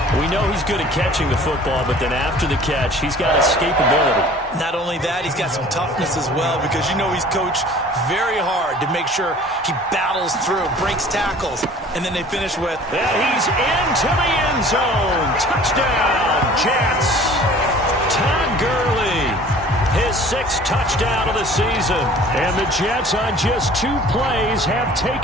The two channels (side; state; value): both; normal; correlation 0.48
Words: We know he's good at catching the football, but then after the catch, he's got escapability. Not only that, he's got some toughness as well, because you know he's coached very hard to make sure he battles through, breaks tackles, and then they finish with... And he's into the end zone. Touchdown, Jets. Todd Gurley, his 6th touchdown of the season. And the Jets on just 2 plays have